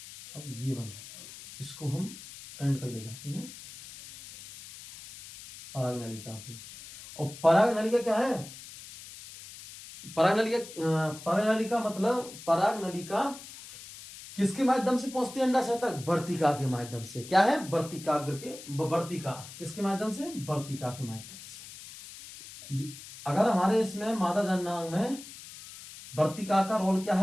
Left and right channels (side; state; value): left; noise; hiss, 15 dB below the sound